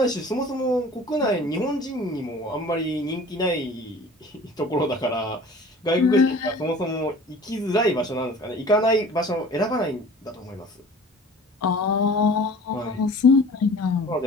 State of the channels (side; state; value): both; normal; correlation 0.45